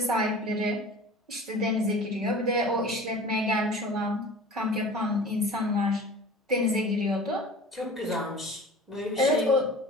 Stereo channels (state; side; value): normal; both; correlation 0.40